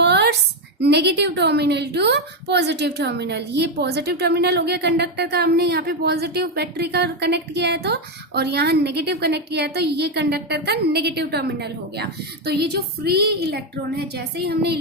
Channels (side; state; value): both; normal; correlation 0.07